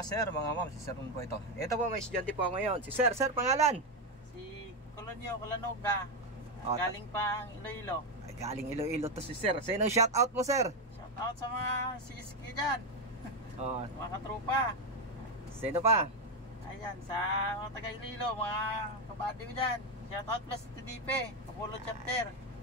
sir, mga ma'am. Si Sir Ron po ito. Ito po, may estudyante po ako ngayon. Si Sir, pangalan? Si Colonio Colanoga. Galing pang Iloilo. Ay, galing Iloilo to si Sir. Sino shout out mo, Sir? Shout out sa mga CSK dyan. Mga katrupa. Sino pa? Ayan, sa mga taga Iloilo, mga kabady ko dyan. Shout out plus TDP, Kapulong Chapter.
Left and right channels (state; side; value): normal; both; correlation 0.08